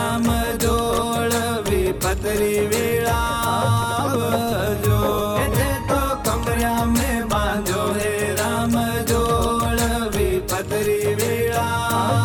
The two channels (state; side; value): identical; both; correlation 1.00